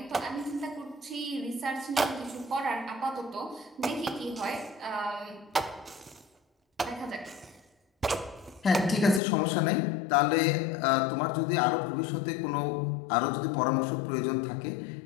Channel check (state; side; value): drops out; right; at 9.2 s